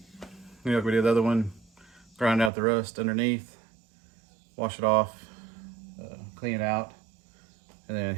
we did the other one, grind out the rust underneath, wash it off, clean it out, and then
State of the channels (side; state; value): left; drops out; at 2.5 s